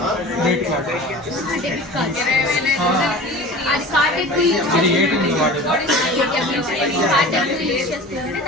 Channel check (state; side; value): normal; both; correlation 0.38